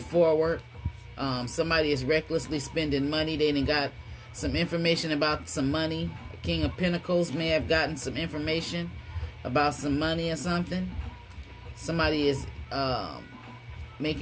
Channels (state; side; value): identical; both; correlation 1.00